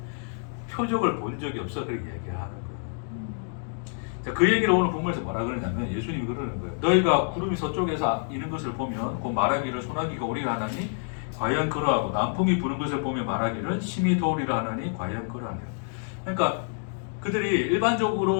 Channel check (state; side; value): silent; right; 60 dB below the other